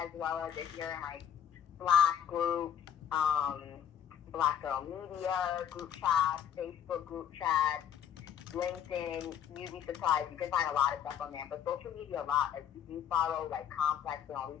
well as if you're in like Slack groups, Black Girl Media group chats, Facebook group chats, LinkedIn. You'd be surprised. You can find a lot of stuff on there. But social media, a lot. Like, if you follow like Complex and all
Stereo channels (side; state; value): right; quieter; 9.2 dB